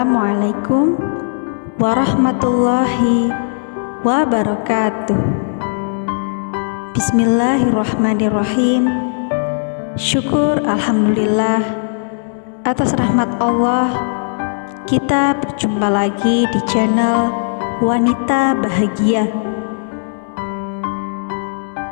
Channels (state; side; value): silent; right; digital silence